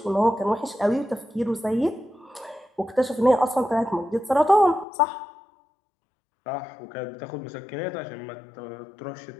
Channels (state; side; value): drops out; right; at 4.9 s